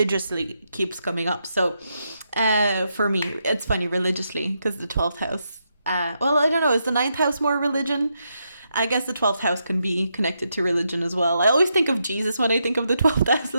keeps coming up. So for me, it's funny, religiously, because the 12th house, well, I don't know, is the 9th house more religion? I guess the 12th house can be connected to religion as well. I always think of Jesus when I think of the 12th house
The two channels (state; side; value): inverted; both; correlation -0.82